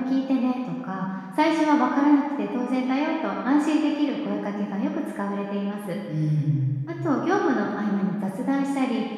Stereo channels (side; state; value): both; identical; correlation 1.00